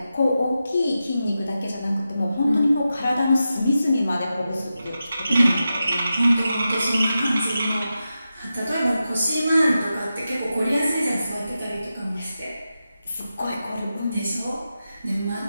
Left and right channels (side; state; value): both; inverted; correlation -0.91